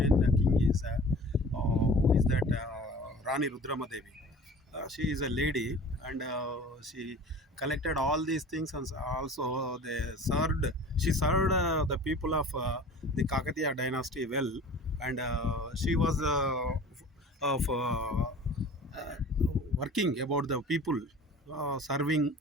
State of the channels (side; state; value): both; normal; correlation 0.43